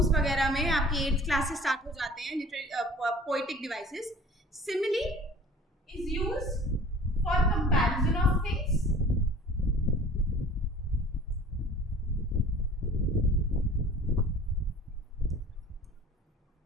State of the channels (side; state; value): both; normal; correlation 0.46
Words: वगैरह में, आपकी 8th क्लास से स्टार्ट हो जाते हैं poetic devices. Simile is used for comparison of things,